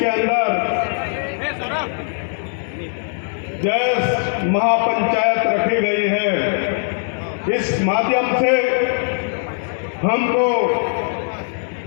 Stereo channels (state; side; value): silent; right; digital silence